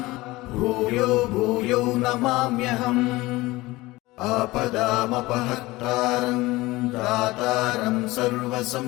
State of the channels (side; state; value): right; quieter; 20.0 dB